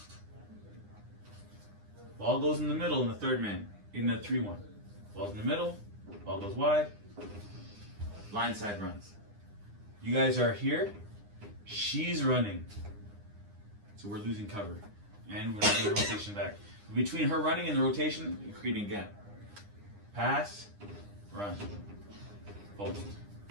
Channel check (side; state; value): left; late; 9.8 ms